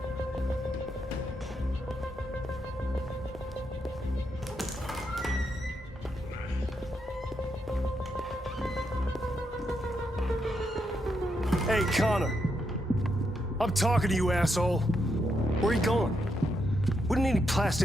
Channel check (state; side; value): normal; both; correlation 0.81